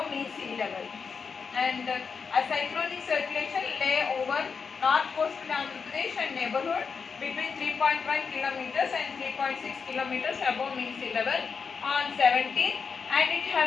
mean sea level. And a cyclonic circulation lay over north coastal Andhra Pradesh and neighborhood between 3.1 kilometers and 3.6 kilometers above mean sea level on 17th, and it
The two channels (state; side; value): quieter; right; 5.6 dB